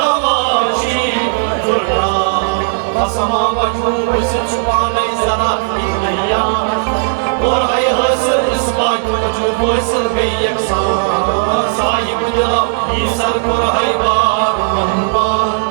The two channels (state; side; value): silent; left; digital silence